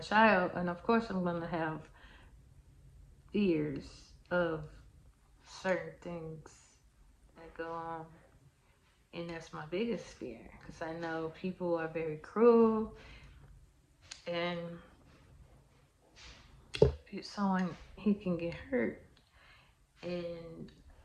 and of course I'm gonna have fears of certain things that go on, and that's my biggest fear because I know people are very cruel, and someone he can get hurt, and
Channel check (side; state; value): both; identical; correlation 1.00